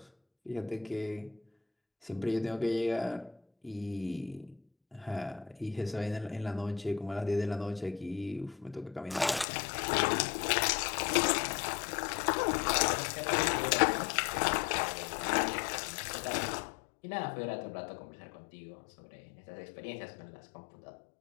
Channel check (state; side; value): drops out; right; at 9.5 s